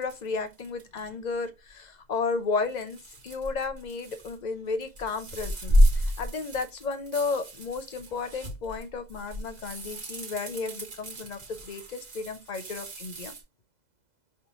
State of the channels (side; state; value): right; late; 2.0 ms